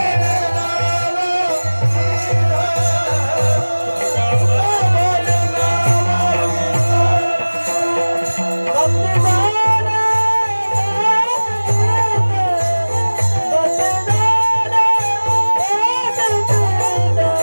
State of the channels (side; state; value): both; inverted; correlation -1.00